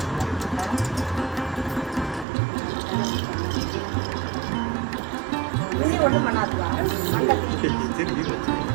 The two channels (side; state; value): left; drops out; at 2.2 s